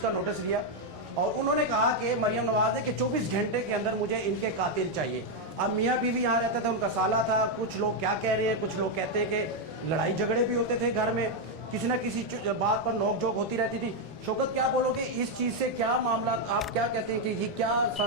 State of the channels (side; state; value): both; normal; correlation 0.02